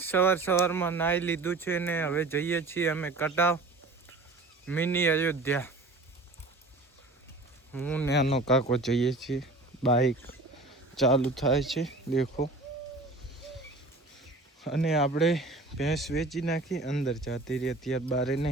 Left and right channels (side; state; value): left; quieter; 3.2 dB